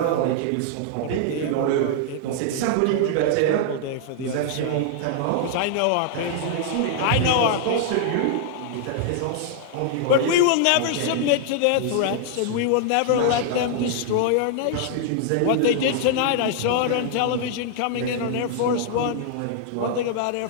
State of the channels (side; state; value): both; different; correlation -0.01